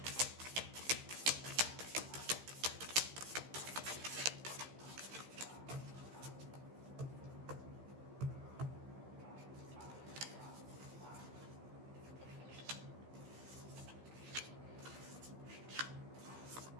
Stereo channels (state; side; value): late; left; 15 ms